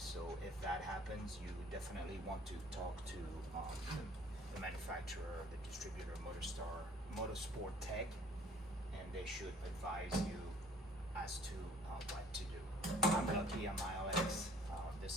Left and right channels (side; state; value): both; normal; correlation 0.56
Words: if that happens, you definitely want to talk to the manufacturer, the distributor, Motorsport Tech, and they should advise you as to what to do. I'm lucky on my LX.